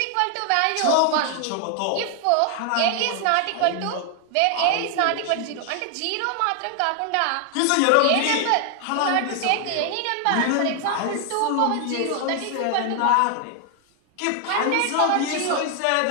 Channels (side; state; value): both; different; correlation 0.00